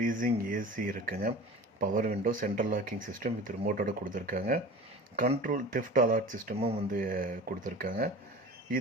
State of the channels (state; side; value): normal; both; correlation 0.38